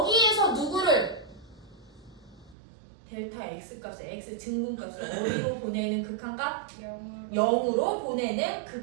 누구를 델타 x 값을 x 증분값을 어디로 보내는 극한값? 0으로 보내는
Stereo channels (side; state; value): left; drops out; at 2.6 s